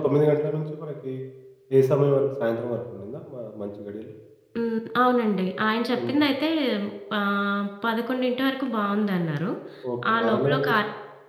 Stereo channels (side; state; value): both; identical; correlation 1.00